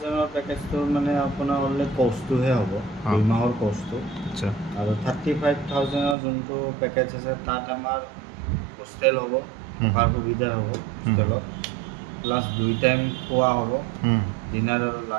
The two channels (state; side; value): drops out; left; at 6.2 s